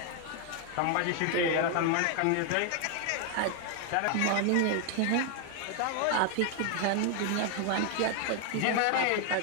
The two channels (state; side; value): different; both; correlation 0.00